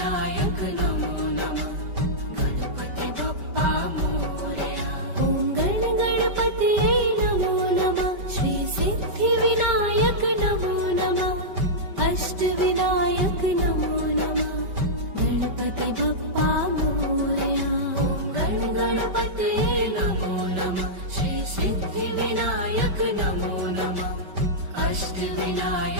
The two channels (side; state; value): left; late; 5.2 ms